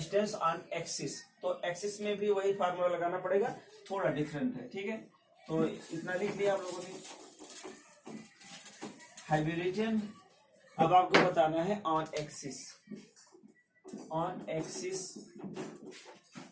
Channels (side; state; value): both; identical; correlation 1.00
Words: on axis, तो एक्सिस में भी वही फार्मूला लगाना पड़ेगा, थोड़ा डिफरेंट है, ठीक है। तो इतना लिख लिया आप लोगों ने, हाइब्रिजन। अब आपको बताना है ऑन एक्सिस, ऑन एक्सिस,